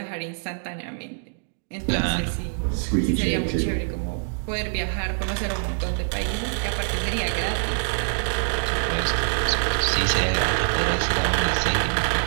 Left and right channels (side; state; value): left; silent; digital silence